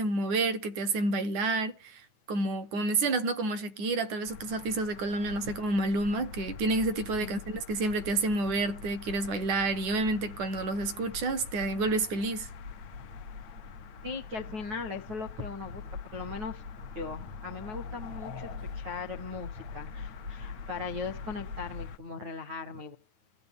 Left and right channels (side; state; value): left; late; 9.4 ms